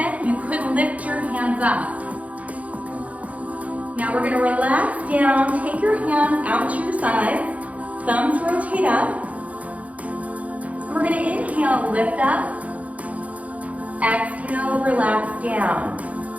You could lift your hands up. Now we're going to relax down. Take your hands out to your sides. Thumbs rotate up. We're going to inhale, lift up. Exhale, relax down.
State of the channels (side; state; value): left; late; 0.068 ms